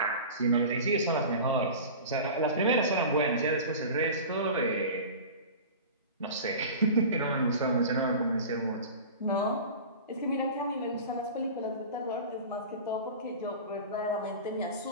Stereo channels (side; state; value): both; inverted; correlation -0.34